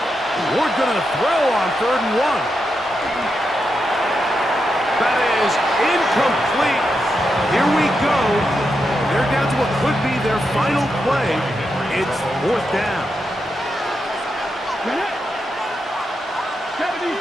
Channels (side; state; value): both; normal; correlation 0.85